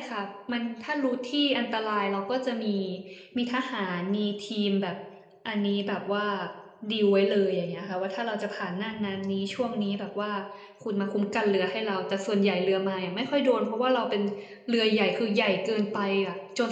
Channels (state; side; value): identical; both; correlation 1.00